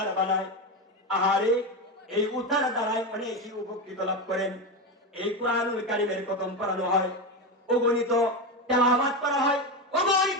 বানায়, আহারে এই উতার দ্বারাই অনেকেই উপকৃত লাভ করেন। এই কোরআনুল কারীমের খতম পড়ানো হয়, অগণিত তেলাওয়াত করা হয়,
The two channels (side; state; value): both; normal; correlation 0.16